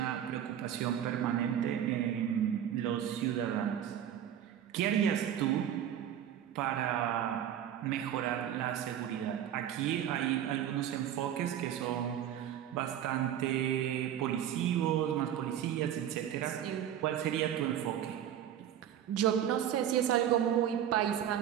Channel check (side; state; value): left; quieter; 10.3 dB